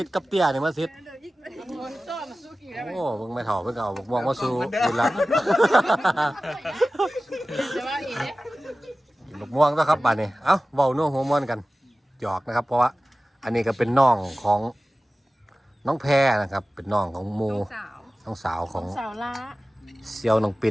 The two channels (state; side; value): normal; both; correlation 0.96